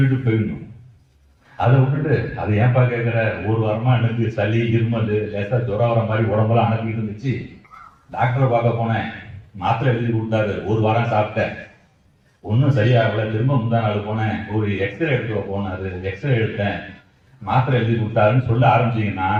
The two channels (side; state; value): both; identical; correlation 1.00